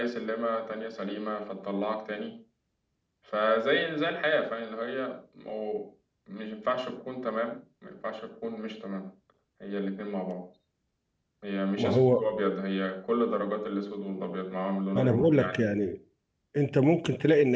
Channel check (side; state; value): both; identical; correlation 1.00